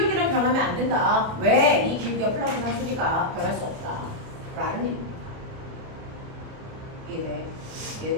변하면 안 된다. 왜? 이 기울기가 플랑크 상수니까 변할 수 없다. 라는 얘기입니다.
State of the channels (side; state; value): left; late; 30 ms